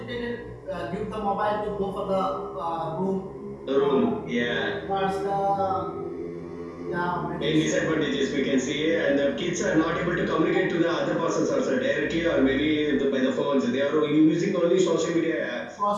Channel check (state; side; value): identical; both; correlation 1.00